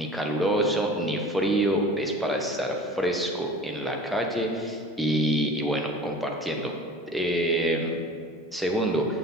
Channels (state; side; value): normal; both; correlation 0.40